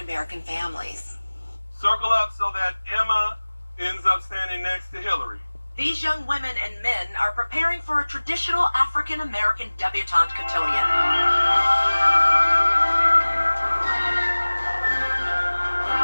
families. Circle up so that Emma ends up standing next to Hillary. These young women and men are preparing for a traditional African-American debutante cotillion.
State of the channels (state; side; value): inverted; both; correlation -1.00